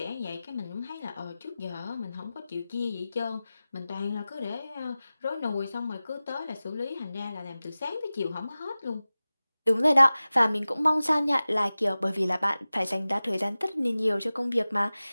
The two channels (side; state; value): both; inverted; correlation -0.96